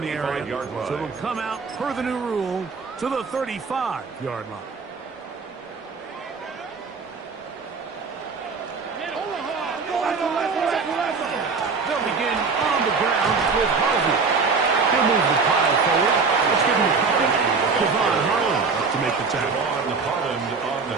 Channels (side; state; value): left; quieter; 4.8 dB